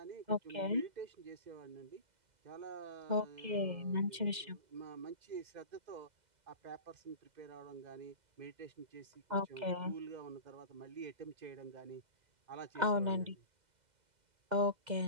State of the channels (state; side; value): late; left; 2.0 ms